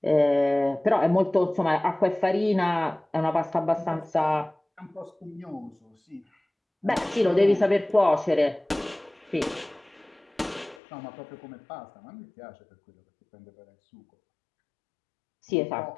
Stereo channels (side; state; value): right; drops out; at 10.8 s